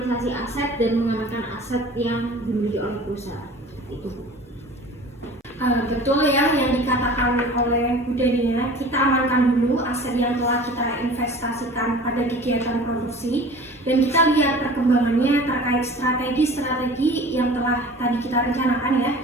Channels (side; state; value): both; normal; correlation 0.42